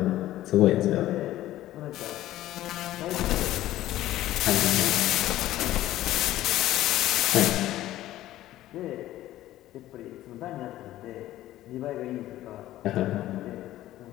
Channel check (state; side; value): quieter; right; 14.6 dB